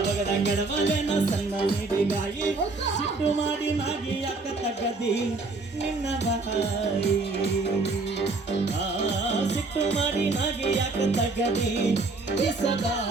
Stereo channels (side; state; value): left; quieter; 3.5 dB